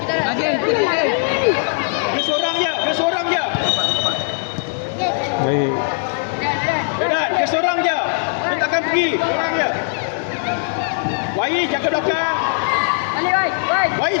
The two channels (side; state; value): right; silent; digital silence